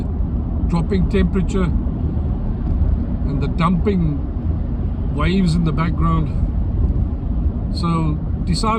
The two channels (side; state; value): both; identical; correlation 1.00